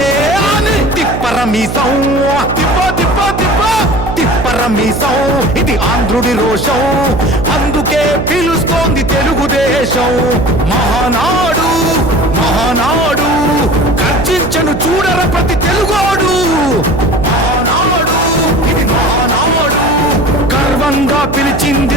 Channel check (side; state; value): right; noise; hum, 5 dB below the sound